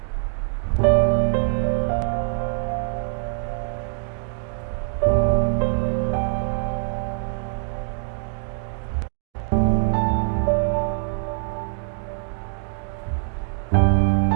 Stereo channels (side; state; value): left; silent; digital silence